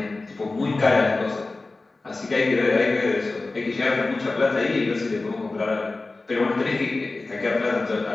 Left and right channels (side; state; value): right; quieter; 3.4 dB